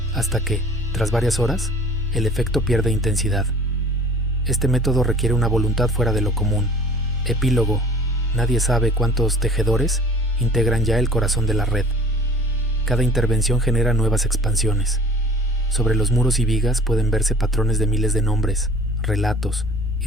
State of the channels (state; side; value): normal; both; correlation 0.48